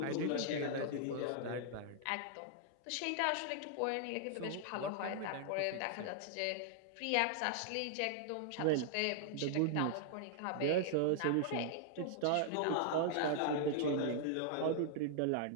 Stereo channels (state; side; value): different; both; correlation -0.01